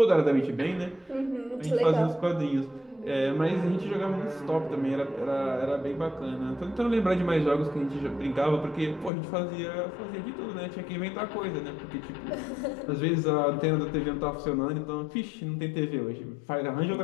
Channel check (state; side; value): drops out; right; at 9.1 s